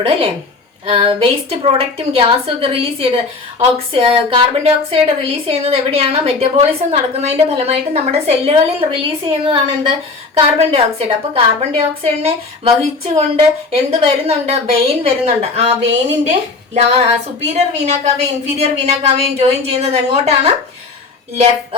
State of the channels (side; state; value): right; quieter; 4.0 dB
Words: അല്ലേ? വേസ്റ്റ് പ്രോഡക്റ്റും ഗ്യാസും ഒക്കെ റിലീസ് ചെയ്ത് കാർബൺ ഡൈ ഓക്സൈഡ് റിലീസ് ചെയ്യുന്നത് എവിടെയാണ്? മെറ്റബോളിസം നടക്കുന്നതിന്റെ ഫലമായിട്ട് നമ്മുടെ സെല്ലുകളിൽ റിലീസ് ചെയ്യുന്നതാണ് എന്ത്? Carbon dioxide. അപ്പൊ കാർബൺ ഡൈ ഓക്സൈഡിനെ വഹിച്ചുകൊണ്ട് എന്ത് വരുന്നുണ്ട്? വെയിൻ വരുന്നുണ്ട്. ആ വെയിനിന്റെ സുപ്പീരിയർ വീനാക്കാവയും ഇൻഫീരിയർ വീനാക്കാവയും ജോയിൻ ചെയ്യുന്നത് എങ്ങോട്ടാണ്?